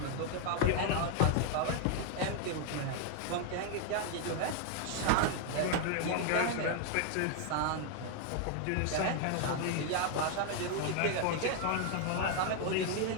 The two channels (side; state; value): both; different; correlation 0.01